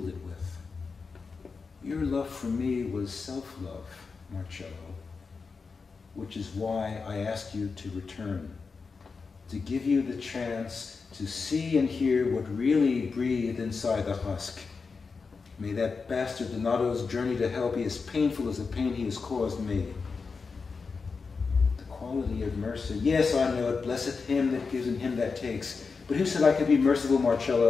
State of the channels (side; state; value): right; quieter; 4.8 dB